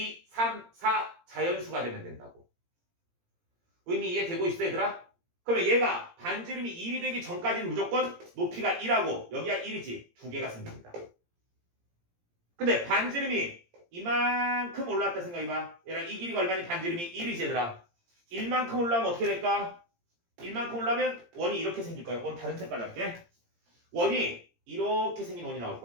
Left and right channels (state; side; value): late; left; 17 ms